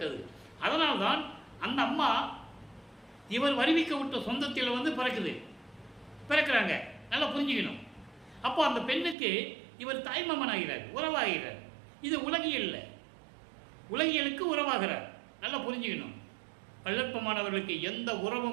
அதனால்தான் அந்த அம்மா இவர் வருவிக்க விட்ட சொந்தத்தில் வந்து பிறக்கிறாங்க. நல்லா புரிஞ்சுக்கணும். அப்போ அந்த பெண்ணுக்கு இவர் தாய்மாமன் ஆகிறார், உறவாகிறார். இது உலகியல்ல, உலகியலுக்கு உறவாகிறார். நல்லா புரிஞ்சுக்கணும். வல்லற்பமானவர்களுக்கு எந்த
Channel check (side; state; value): left; drops out; at 9.2 s